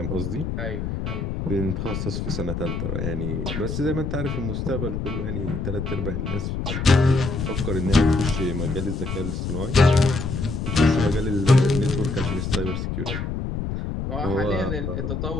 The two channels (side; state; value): left; noise; rumble, 3 dB below the sound